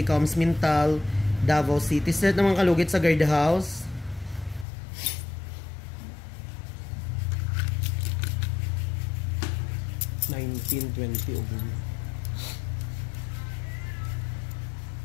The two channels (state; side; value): drops out; right; at 4.7 s